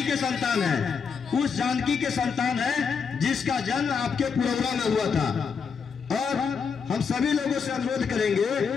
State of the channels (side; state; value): right; quieter; 6.0 dB